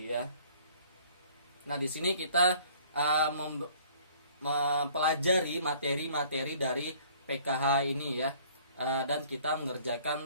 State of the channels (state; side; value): inverted; both; correlation -0.55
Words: ya. Nah, di sini kita mempelajari materi-materi dari PKH ini ya, dan kita